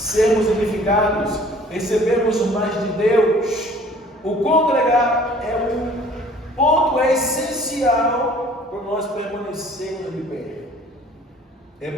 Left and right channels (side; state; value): both; normal; correlation 0.52